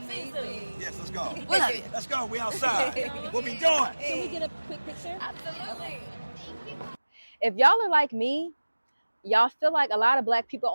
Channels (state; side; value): inverted; both; correlation -1.00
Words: Yes, let's go. We love you. Let's go. We outside. We'll be doing. Can we get a quick picture? Absolutely. If y'all are like me, y'all feel like a lot of black people